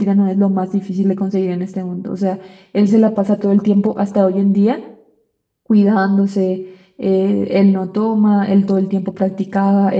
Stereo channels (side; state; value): both; identical; correlation 1.00